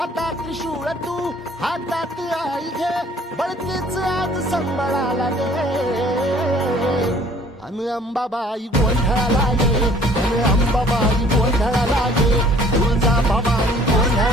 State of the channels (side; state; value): both; normal; correlation 0.54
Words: त्रिशूळ तू हातात आई घे बळतेच आज संबळाला दे अन अंबाबाई गोंधळाला गे अन अंबाबाई गोंधळाला गे तुळजा भवानी